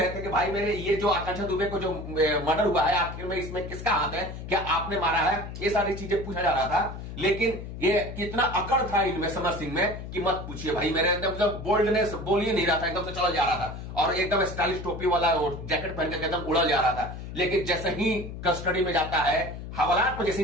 थे कि भाई मेरे ये जो आकांक्षा दुबे को जो मर्डर हुआ है, आखिर में इसमें किसका हाथ है, क्या आपने मारा है, ये सारी चीजें पूछा जा रहा था। लेकिन ये कितना अकड़ था इनमें समर सिंह में कि मत पूछिए भाई, मेरे एकदम बोल्डनेस बोल ही नहीं रहा था, एकदम से चला जा रहा था और एकदम स्टाइलिश टोपी वाला जैकेट पहन के एकदम उड़ा जा रहा था। लेकिन जैसे ही कस्टडी में जाता है, हवालात में जैसे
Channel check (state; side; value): noise; left; hum, 9 dB below the sound